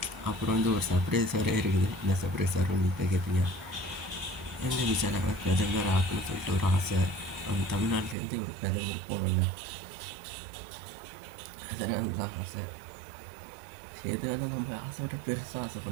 அப்புறம் வந்து ஒரு சர்ப்ரைஸ் வேறு இருக்குது. என்ன சர்ப்ரைஸ் வேறு நீங்கள் கேட்பீங்க. எங்கள் விஜயனை பிரதமர் ஆக்கணும்னு சொல்லிட்டு ஒரு ஆசை. அவங்க தமிழ்நாட்டிலேருந்து ஒரு பிரதமர் போகணும்ல, அதனால தான் ஆசை. எது வேணால் நம்ம ஆசையோட பெருசாக ஆசை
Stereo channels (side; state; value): left; drops out; at 8.2 s